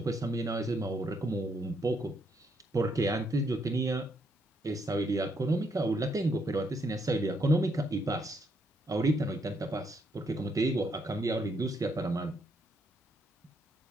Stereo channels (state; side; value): normal; both; correlation 0.74